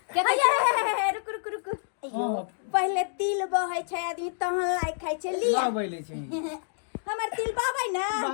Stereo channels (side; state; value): right; silent; digital silence